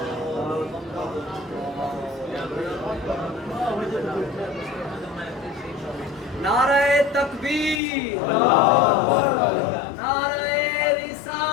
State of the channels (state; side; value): drops out; right; at 7.8 s